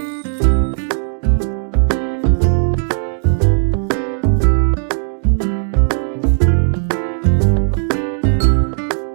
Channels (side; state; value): left; silent; digital silence